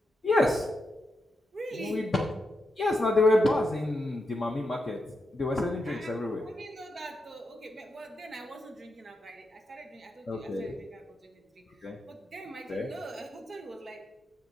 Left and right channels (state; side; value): normal; both; correlation 0.85